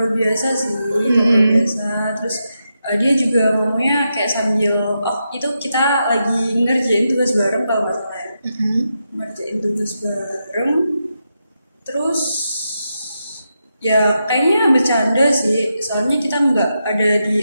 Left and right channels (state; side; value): inverted; both; correlation -0.86